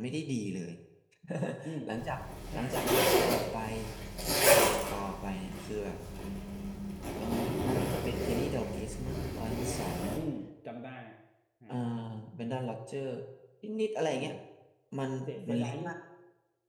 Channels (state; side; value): identical; both; correlation 1.00